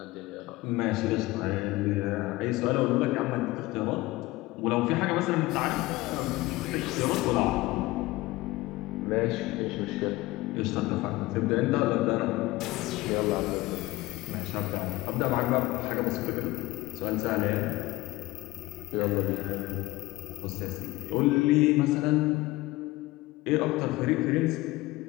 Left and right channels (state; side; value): quieter; right; 19.6 dB